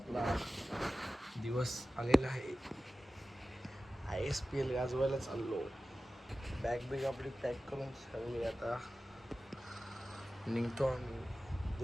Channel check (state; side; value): normal; both; correlation 0.95